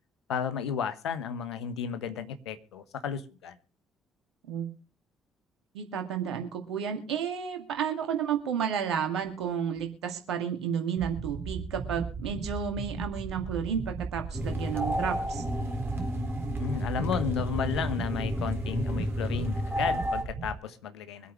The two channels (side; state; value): both; normal; correlation 0.51